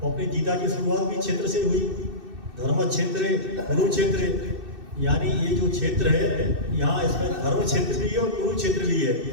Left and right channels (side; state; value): left; late; 2.6 ms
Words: अपनी गीता की शुरुआत भी क्षेत्र से हुई। धर्म क्षेत्र, कुरुक्षेत्र, यानी ये जो क्षेत्र है यहाँ इसमें धर्म क्षेत्र भी है और कुरुक्षेत्र भी है।